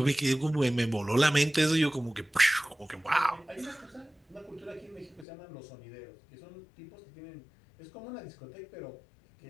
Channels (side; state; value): right; drops out; at 5.2 s